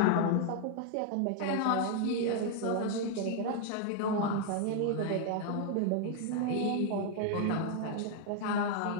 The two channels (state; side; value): different; both; correlation 0.00